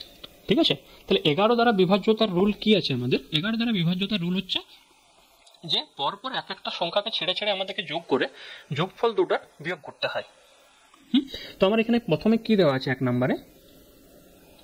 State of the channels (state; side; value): identical; both; correlation 1.00